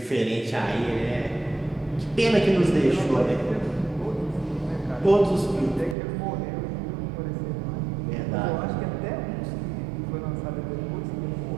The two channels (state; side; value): drops out; left; at 6.0 s